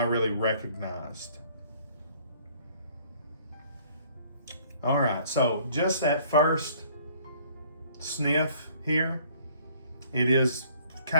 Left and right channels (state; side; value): inverted; both; correlation -0.58